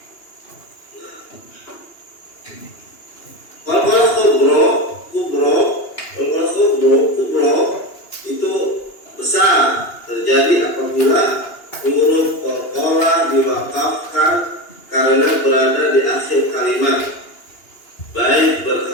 Qalqalah kubro itu besar, terjadi apabila huruf qalqalah diwakafkan karena berada di akhir kalimat, baik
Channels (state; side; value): late; right; 2.9 ms